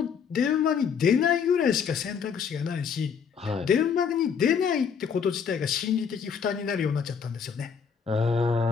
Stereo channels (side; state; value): right; quieter; 6.7 dB